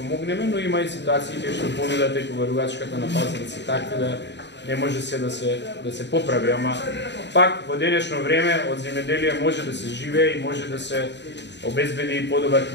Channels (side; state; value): right; late; 0.51 ms